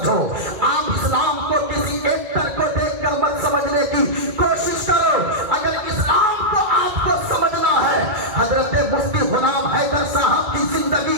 آپ اسلام کو کسی ایکٹر کو دیکھ کر مت سمجھنے کی کوشش کرو۔ اگر اسلام کو آپ کو سمجھنا ہے، حضرت مفتی غلام حیدر صاحب کی زندگی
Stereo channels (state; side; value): late; left; 2.2 ms